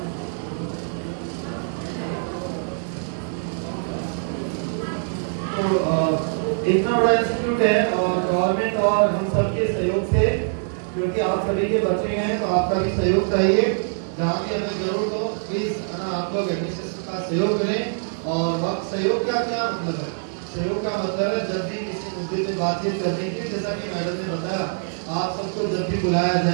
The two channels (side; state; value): left; silent; digital silence